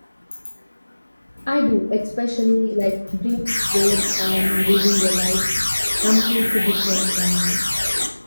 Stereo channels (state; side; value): inverted; both; correlation -1.00